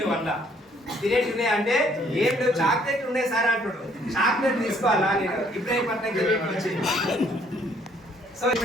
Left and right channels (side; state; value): both; normal; correlation 0.64